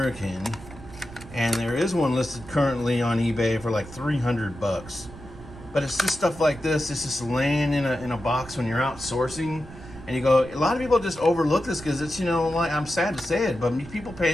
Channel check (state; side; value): noise; right; rumble, 16 dB below the sound